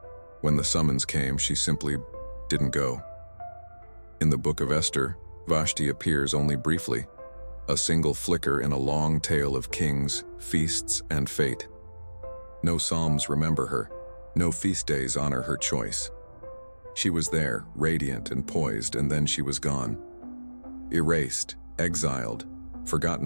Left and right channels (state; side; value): inverted; both; correlation -1.00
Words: When the summons came, she simply didn't go. In the book of Esther, Vashti appears only briefly, a single flicker in a long tale of kings, feasts, and fate. No psalms remember her. No feast days honor her choice. She was there, radiant and poised, and then she was gone. Erased, exiled,